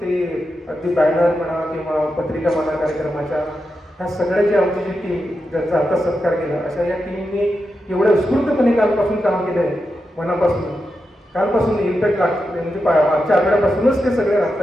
ते अगदी बॅनर म्हणा किंवा पत्रिका म्हणा कार्यक्रमाच्या, ह्या सगळ्याची आमची जी टीम ज्यांचा आता सत्कार केला, अशा या टीमने एवढ्या उत्स्फूर्तपणे कालपासून काम केलं आहे. मनापासून कालपासून इम्पॅक्ट लागते, म्हणजे मागच्या आठवड्यापासूनच ते सगळे राहत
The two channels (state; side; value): normal; both; correlation 0.88